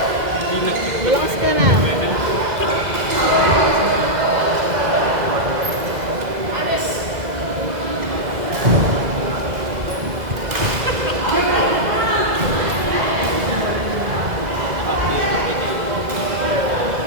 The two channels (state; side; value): late; left; 2.0 ms